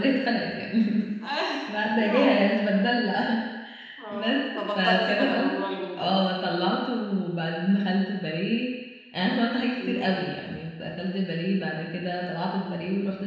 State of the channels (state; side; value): identical; both; correlation 1.00